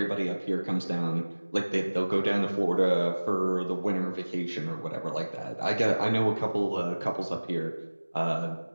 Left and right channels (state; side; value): inverted; both; correlation -1.00